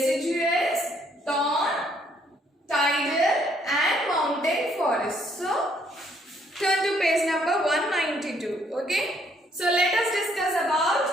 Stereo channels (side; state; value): both; normal; correlation 0.67